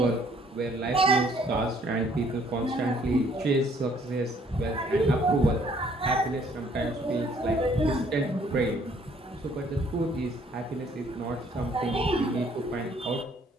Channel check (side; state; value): both; normal; correlation 0.62